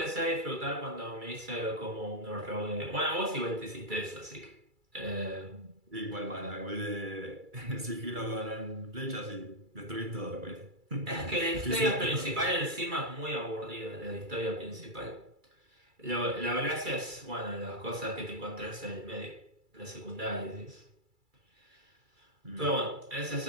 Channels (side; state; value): left; late; 2.3 ms